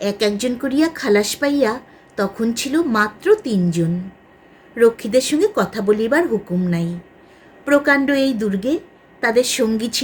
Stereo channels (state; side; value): identical; both; correlation 1.00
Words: একজন করিয়া খালাস পাইয়া তখন ছিল মাত্র 3 জন। রক্ষীদের সঙ্গে কথা বলিবার হুকুম নাই। প্রকাণ্ড এই দুর্গে তাদের সঙ্গী